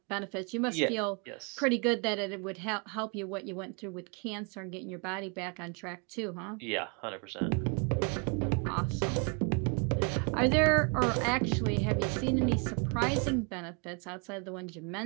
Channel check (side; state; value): left; quieter; 35.3 dB